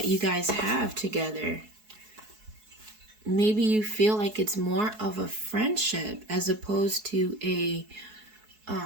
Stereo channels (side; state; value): left; late; 4.7 ms